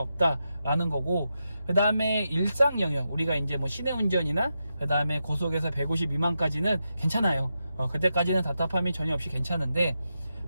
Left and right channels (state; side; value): inverted; both; correlation -0.87